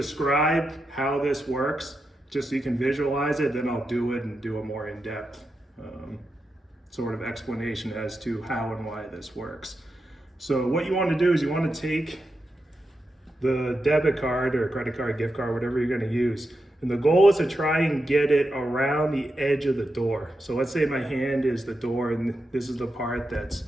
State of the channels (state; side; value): normal; both; correlation 0.88